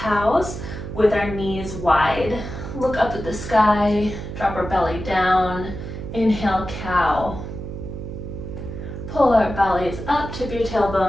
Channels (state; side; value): noise; right; hum, 8 dB below the sound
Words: with our knees wide. Look up at the sky, drop our belly down, inhale cow. Pull our bellies up, tip your